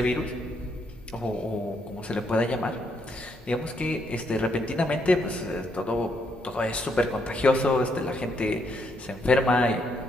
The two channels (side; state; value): both; normal; correlation 0.75